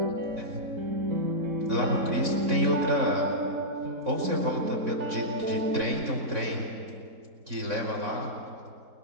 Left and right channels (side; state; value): left; late; 3.6 ms